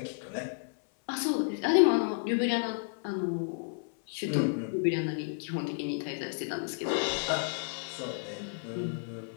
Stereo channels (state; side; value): silent; right; 57 dB below the other